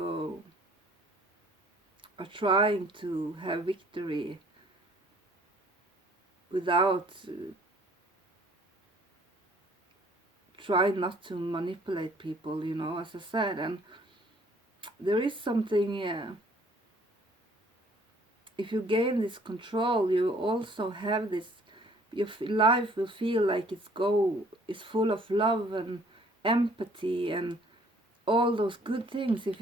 are trying to have victory without try not to manipulate people, you know, as I said. And there is something, if you gain this control, you also have this, your life will feel like it's full of love and empathy and all those good things if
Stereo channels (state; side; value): normal; both; correlation 0.58